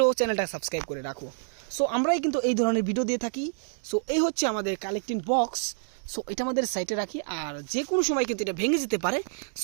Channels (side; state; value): left; silent; digital silence